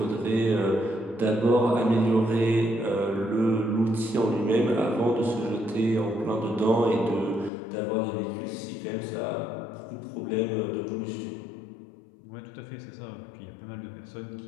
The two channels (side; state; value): right; drops out; at 7.5 s